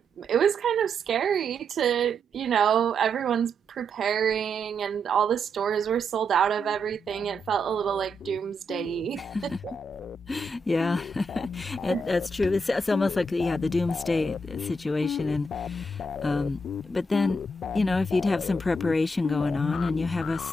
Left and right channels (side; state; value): both; normal; correlation 0.80